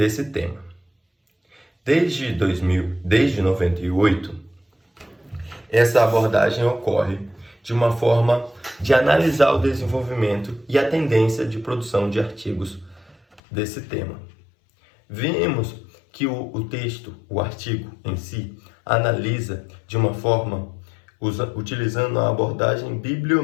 tema. Desde 98, essa abordagem ocorre de uma forma de analisar o desenvolvimento e a tendência de produção de artigos desse tema. Vimos que o artigo em si, analisa de uma forma utilizando a abordagem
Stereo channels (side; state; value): right; drops out; at 13.4 s